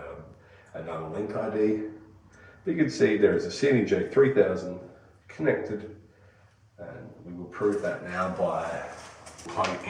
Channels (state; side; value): identical; both; correlation 1.00